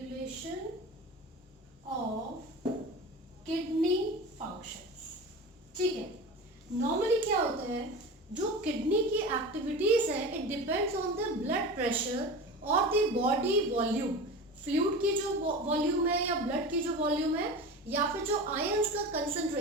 of kidney functions. ठीक है, normally क्या होता है, जो kidney की activities है it depends on the blood pressure और the body volume. Fluid की जो वॉल्यूम है या ब्लड की जो वॉल्यूम है या फिर जो आयंस का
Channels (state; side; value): normal; both; correlation 0.31